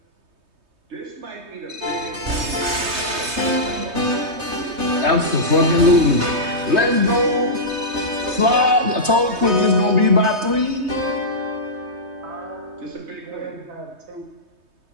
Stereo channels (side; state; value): left; late; 3.2 ms